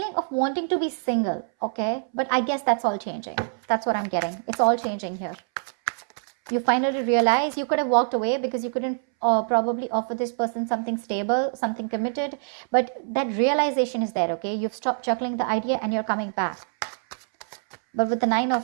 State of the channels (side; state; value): left; silent; 62 dB below the other